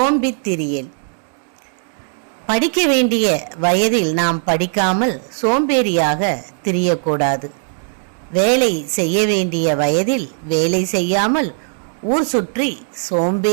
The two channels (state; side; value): silent; left; 66 dB below the other